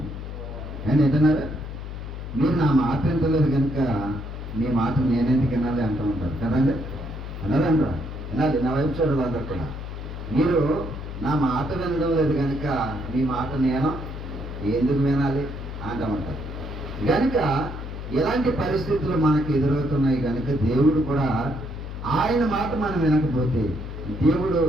నేను ఏంటన్నారా, మీరు నా మాట వింటలేదు కనుక మీ మాట నేనెందుకు వినాలి అంటూ ఉంటారు కదండి. అన్నారంటారా? వినాలి. నా వైపు చూడాలి అందరు కూడా. మీరు నా మాట వినడం లేదు కనుక మీ మాట నేను ఎందుకు వినాలి అంటామంటారు. కనుక ఎలాంటి పరిస్థితులు మనకు ఎదురవుతున్నాయి కనుక దేవుడు కూడా ఆయన మాట మనం వినకపోతే దేవుడు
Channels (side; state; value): left; noise; hum, 8 dB below the sound